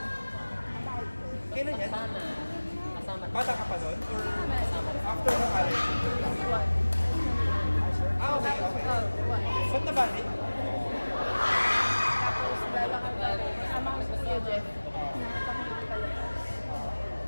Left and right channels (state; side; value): inverted; both; correlation -1.00